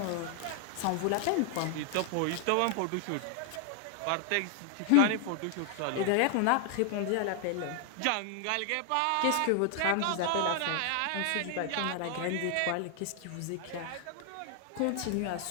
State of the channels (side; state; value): both; different; correlation 0.00